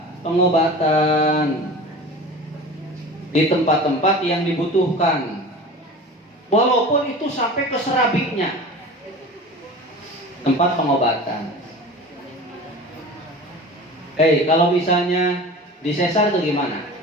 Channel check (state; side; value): normal; both; correlation 0.37